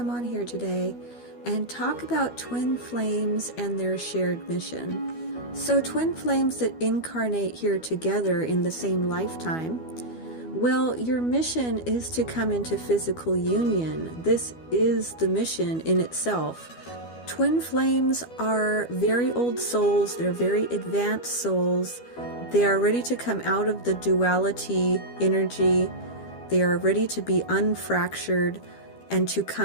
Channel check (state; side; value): late; right; 12 ms